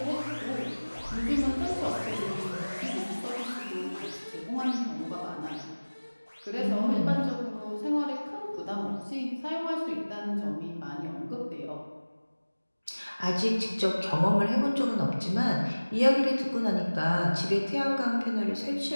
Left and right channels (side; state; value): both; inverted; correlation -1.00